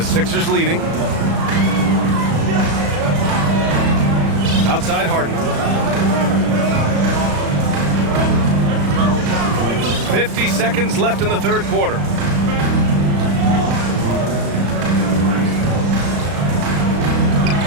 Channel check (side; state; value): left; late; 35 ms